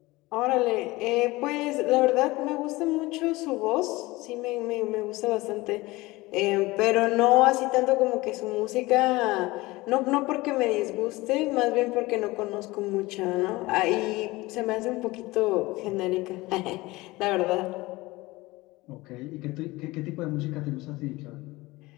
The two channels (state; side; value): quieter; right; 20.9 dB